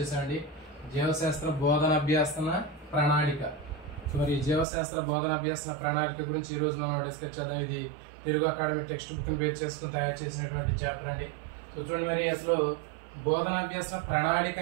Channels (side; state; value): left; drops out; at 4.7 s